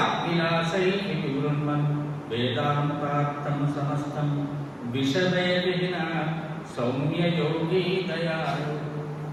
వివృణ్మన్ వేదాంతార్థం సమస్తం విశదే విహిన సౌమ్యయోగీ దయాళు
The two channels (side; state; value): both; identical; correlation 1.00